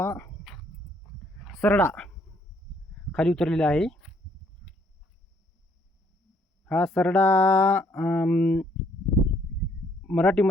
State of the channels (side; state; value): both; normal; correlation 0.67